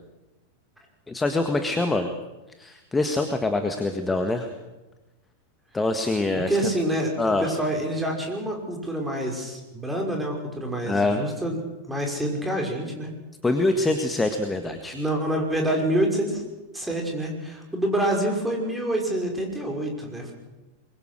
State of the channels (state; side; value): normal; both; correlation 0.52